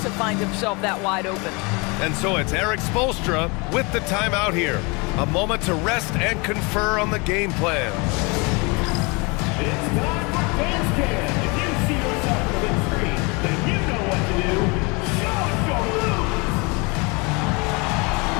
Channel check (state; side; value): quieter; right; 28.8 dB